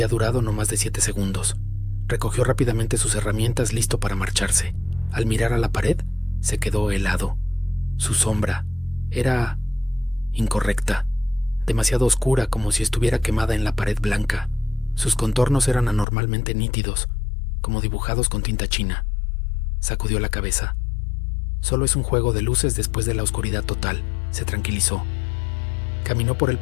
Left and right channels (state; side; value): drops out; right; at 16.1 s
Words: durado no más de 7 segundos. Recogió rápidamente sus herramientas listo para marcharse. Al mirar a la pared, se quedó helado. Su sombra era incorrecta, demasiado oscura, como si estuviera quemada en la pared blanca. Sus contornos eran anormalmente nítidos, como dibujados con tinta china. Sacudió la cabeza. Solo es un juego de luces después de la oscuridad total, se tranquilizó. Caminó por el